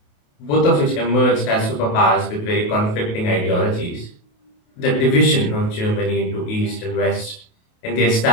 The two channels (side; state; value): right; late; 28 ms